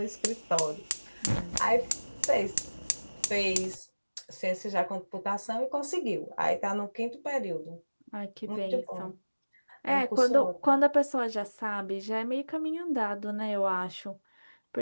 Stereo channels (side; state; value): both; inverted; correlation -1.00